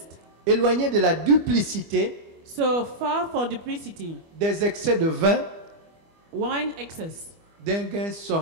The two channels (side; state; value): left; late; 25 ms